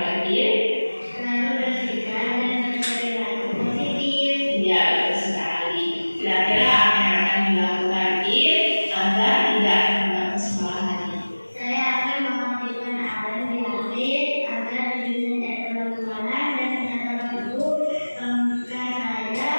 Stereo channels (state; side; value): inverted; both; correlation -1.00